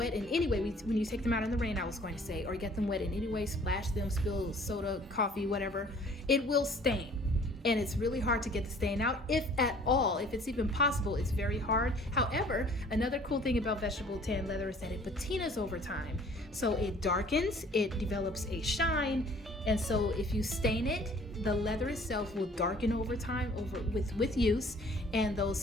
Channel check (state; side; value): normal; both; correlation 0.53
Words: in any way. When you take them out in the rain, I was going to say, or get them wet in any way, splash them, spill soda, coffee, whatever, it will stain. And it's really hard to get the stain out, if at all. If it's even possible, it's very hard. However, another cool thing about vegetable tan leather is that it patinas over time. So it darkens, it develops a shine, and so if you stain it, the leather itself will darken over time with use, and those